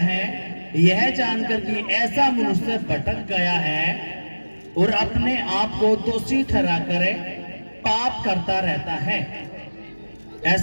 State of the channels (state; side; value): inverted; both; correlation -1.00